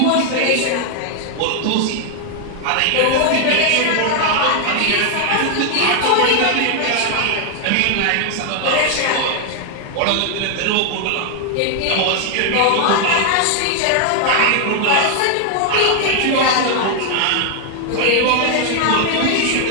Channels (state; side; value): different; both; correlation 0.00